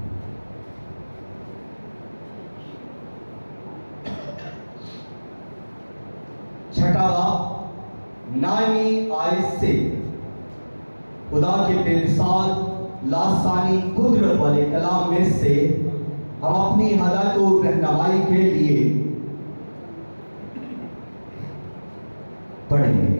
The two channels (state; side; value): inverted; both; correlation -1.00